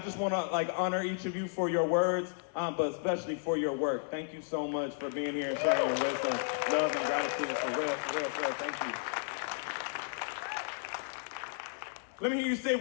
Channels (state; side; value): silent; right; digital silence